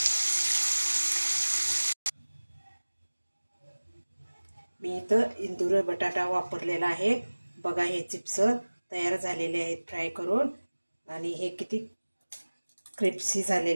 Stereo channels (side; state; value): both; inverted; correlation -1.00